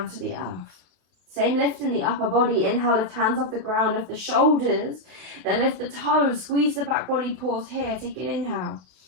to the earth. Same lift in the upper body. Inhale, lift hands off the ground, lift the shoulders, then lift the toes, squeeze the back body, pause here. Take an inhale.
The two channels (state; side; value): late; left; 32 ms